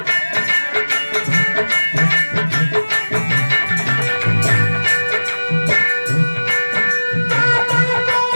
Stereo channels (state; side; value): inverted; both; correlation -1.00